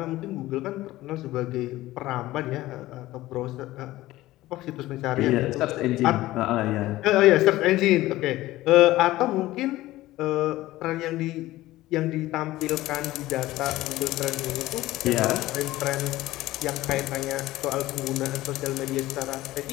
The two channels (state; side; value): quieter; right; 16.8 dB